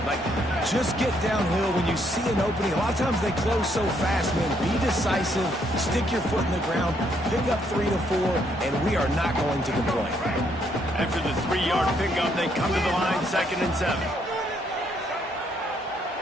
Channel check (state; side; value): normal; both; correlation 0.72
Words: Like, just get downhill when you see an opening. A lot of times they close so fast, man. Be decisive, stick your foot in the ground, pick up 3 to 4, and we are not going to complain. After the 3-yard pickup, they come to the line, 2nd and 7.